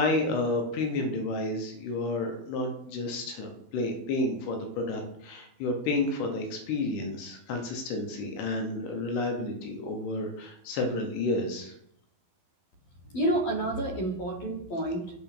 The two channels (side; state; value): right; late; 12 ms